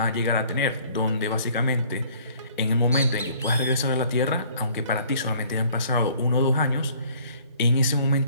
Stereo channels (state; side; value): inverted; both; correlation -0.56